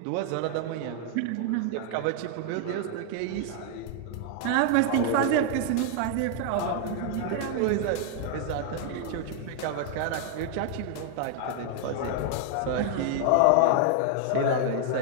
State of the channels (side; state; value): both; different; correlation 0.00